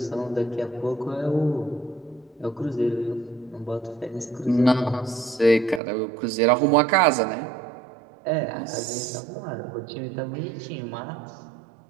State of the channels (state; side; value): drops out; left; at 5.8 s